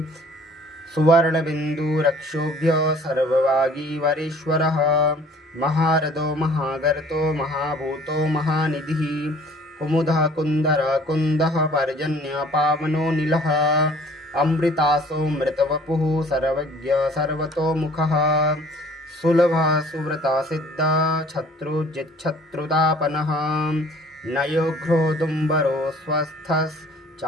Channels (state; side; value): normal; both; correlation 0.53